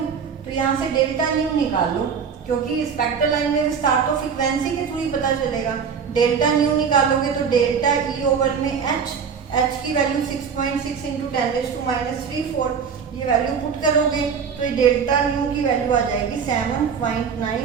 तो यहाँ से डेल्टा न्यू निकाल लो क्योंकि स्पेक्ट्रल लाइन में विस्तार तो फ्रीक्वेंसी के थ्रू ही पता चलेगा। डेल्टा न्यू निकालोगे तो डेल्टा ई ओवर में h की वैल्यू 6.6 इंटू 10⁻⁴ ये वैल्यू पुट करोगे तो ये डेल्टा न्यू की वैल्यू आ जाएगी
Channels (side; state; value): left; quieter; 6.5 dB